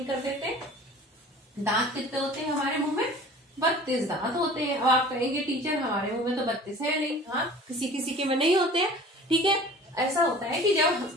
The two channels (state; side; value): normal; both; correlation 0.44